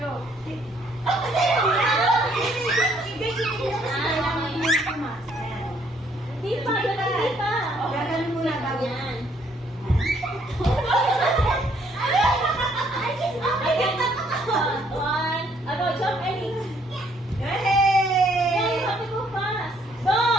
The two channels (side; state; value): both; normal; correlation 0.66